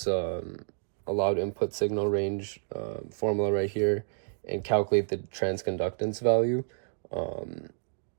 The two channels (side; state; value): left; silent; digital silence